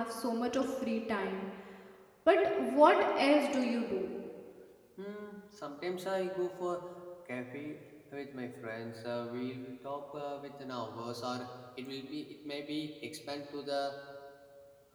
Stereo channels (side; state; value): both; identical; correlation 1.00